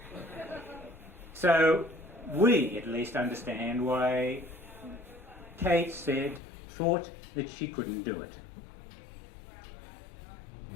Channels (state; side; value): drops out; right; at 6.4 s